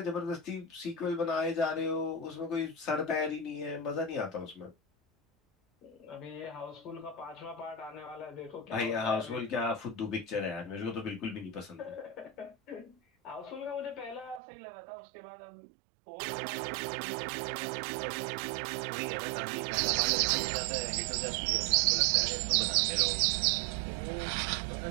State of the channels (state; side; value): drops out; left; at 14.4 s